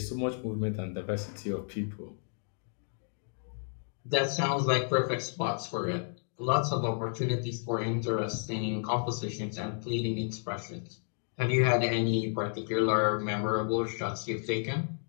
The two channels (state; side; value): silent; right; 57 dB below the other